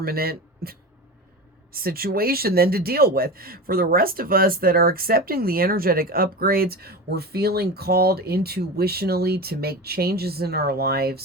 situation then to deal with. For the rest of us that are accepting the energetic upgrades, we're feeling called intuitionally to make changes in our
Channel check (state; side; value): normal; both; correlation 0.27